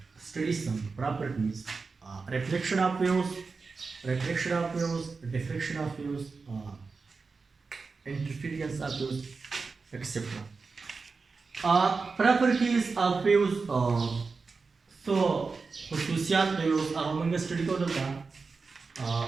study some properties. Reflection of waves, diffraction of waves, interference of waves, etc. Properties of waves. So خصوصيات waves هغه موږ study کوو دلته.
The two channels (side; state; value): left; quieter; 4.5 dB